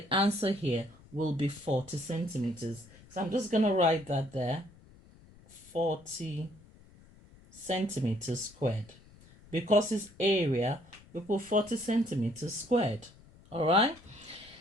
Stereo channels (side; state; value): left; noise; rumble, 24 dB below the sound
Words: answer here will be 40 centimeters. So I'm just going to write that there. 40 centimeters squared. Because it's area, we put 40 centimeters squared. All right.